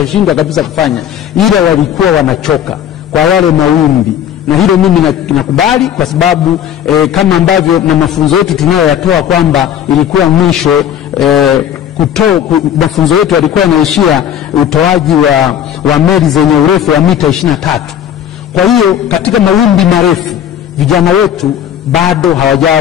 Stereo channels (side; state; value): right; quieter; 9.6 dB